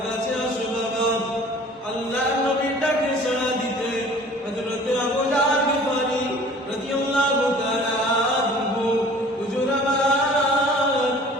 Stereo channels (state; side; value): normal; both; correlation 0.48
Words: কাছে আসো বাবা। আল্লাহর নবী ডাকে সাড়া দিতে হযরত আবু জাহল গিফারি রাদিয়াল্লাহু তাআলা আনহু হুজুর আমার